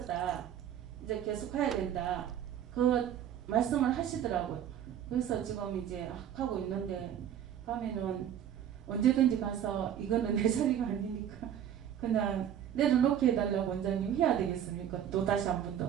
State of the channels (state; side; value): quieter; left; 9.8 dB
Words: 이제 계속 가야 된다. 그 말씀을 하시더라고요. 그래서 지금 이제 하고 있는데 가면은 언제든지 가서 이거는 내 자리가 아니니까 그냥 내려놓게 해달라고 원장님 해야 되겠습니까? 또 다시 한 번